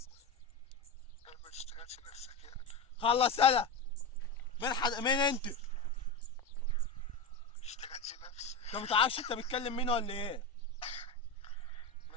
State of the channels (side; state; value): right; quieter; 3.1 dB